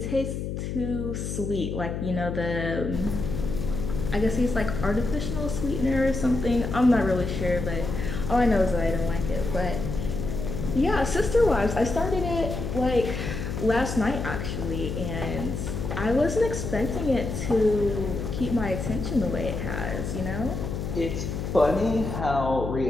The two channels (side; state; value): left; noise; hum, 4 dB below the sound